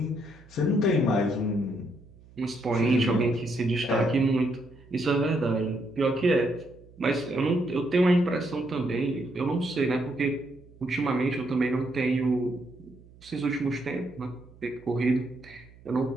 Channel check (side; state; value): right; noise; hum, 24 dB below the sound